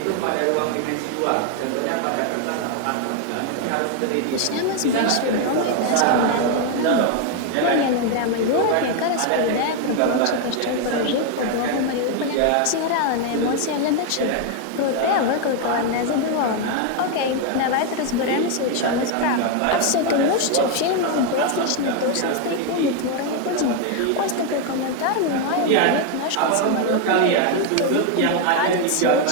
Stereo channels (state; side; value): different; both; correlation 0.01